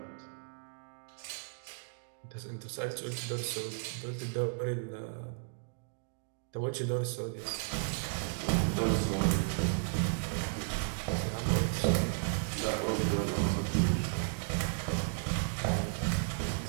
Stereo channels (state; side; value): silent; left; digital silence